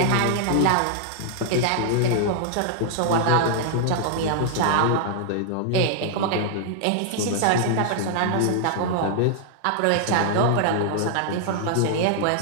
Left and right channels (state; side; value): different; both; correlation -0.01